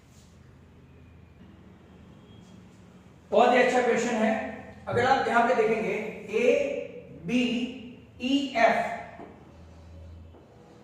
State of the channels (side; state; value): both; identical; correlation 1.00